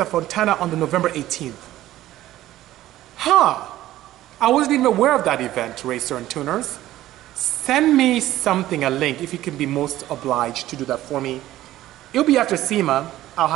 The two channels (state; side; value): quieter; left; 14.6 dB